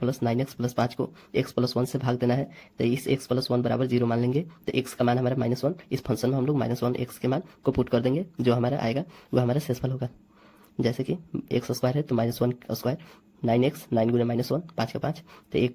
9x प्लस 5 को x प्लस 1 से भाग देना है तो इस x प्लस 1 बराबर 0 मान लेंगे, तो x का मान हमारा -1, इस फंक्शन में हम लोग -1 x के मान को पुट कर देंगे, जो हमारा आएगा वो हमारा शेषफल होगा। जैसे कि x² है तो -1², 9x 9 गुणे -1 5 का 5, तो 1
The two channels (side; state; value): both; identical; correlation 1.00